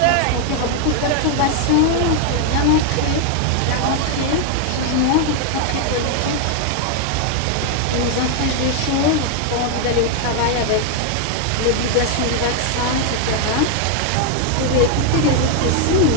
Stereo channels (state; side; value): different; both; correlation 0.00